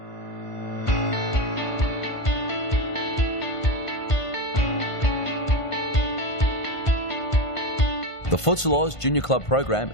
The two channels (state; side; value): late; right; 1.5 ms